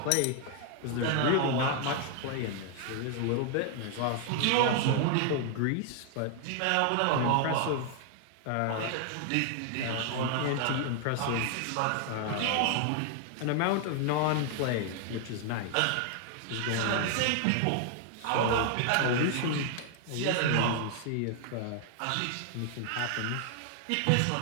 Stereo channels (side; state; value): both; different; correlation 0.00